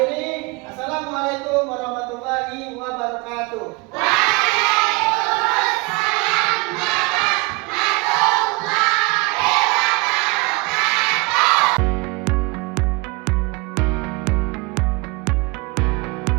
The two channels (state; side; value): quieter; left; 26.5 dB